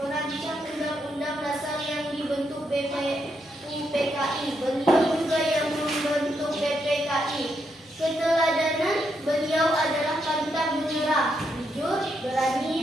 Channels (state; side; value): normal; both; correlation 0.80